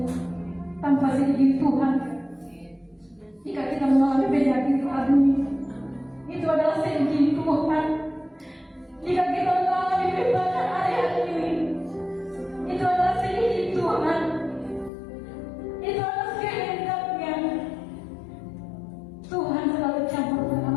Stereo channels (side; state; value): right; drops out; at 14.9 s